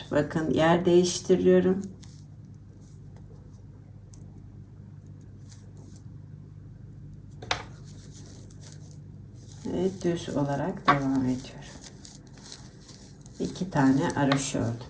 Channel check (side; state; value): both; identical; correlation 1.00